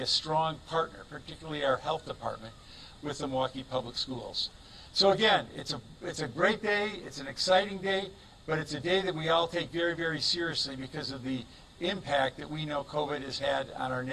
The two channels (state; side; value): identical; both; correlation 1.00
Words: a strong partner, particularly our health department, with the Milwaukee Public Schools. So again, it's a great day, it's an exciting day, but it's a day that we all take very, very seriously because of the impact that we know COVID has had on our